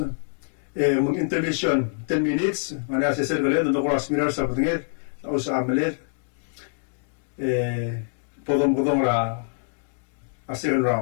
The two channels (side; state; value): right; silent; digital silence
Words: mung intervention 10 minutes mana asesor gale do ko asmirar sa patingir o sa amalir podong ra a second